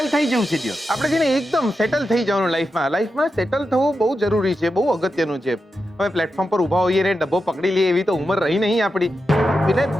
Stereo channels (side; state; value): both; normal; correlation 0.88